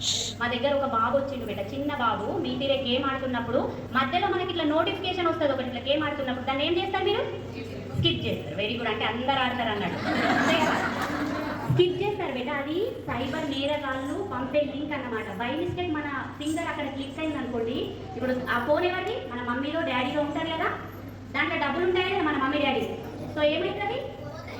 మా దగ్గర ఒక బాబు వచ్చిండు బేట, చిన్న బాబు. మీ తీరే గేమ్ ఆడుతున్నప్పుడు మధ్యలో మనకి ఇట్లా నోటిఫికేషన్ వస్తుంది ఒకటి, ఇట్లా గేమ్ ఆడుతున్నప్పుడు దాన్ని ఏం చేస్తారు మీరు? స్కిప్ చేస్తారు. వెరీ గుడ్, అంటే అందరు ఆడతారు అన్నట్టు. స్కిప్ చేస్తారు బేట. అది సైబర్ నేరగాళ్ళు పంపే లింక్ అన్నమాట. బై మిస్టేక్ మన ఫింగర్ అక్కడ క్లిక్ అయింది అనుకోండి, ఇప్పుడు ఆ ఫోన్ ఎవరిది? మన మమ్మీలో డాడీలో ఉంటారు కదా, దాంట్లో డబ్బులు ఉంటాయి కదా మన మమ్మీ డాడీ. సో ఏమవుతుంది?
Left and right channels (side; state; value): both; identical; correlation 1.00